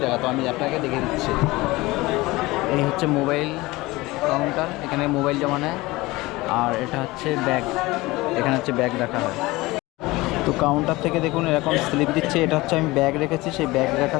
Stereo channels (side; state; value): right; quieter; 20.7 dB